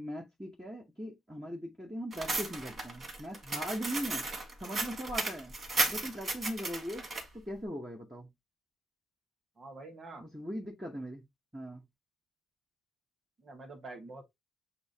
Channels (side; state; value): both; normal; correlation 0.80